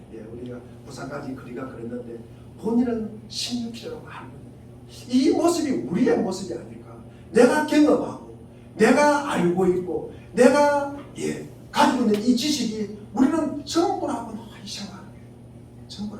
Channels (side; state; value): both; identical; correlation 1.00